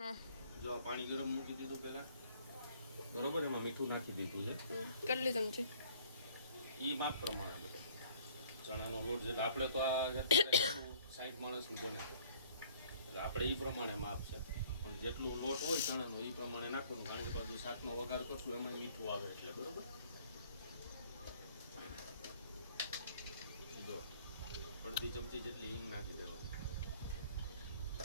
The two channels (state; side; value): inverted; both; correlation -0.57